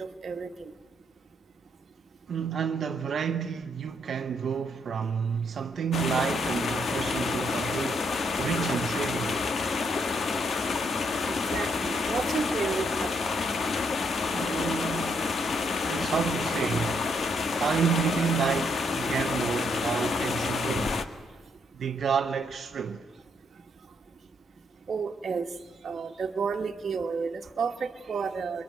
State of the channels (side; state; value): both; normal; correlation 0.74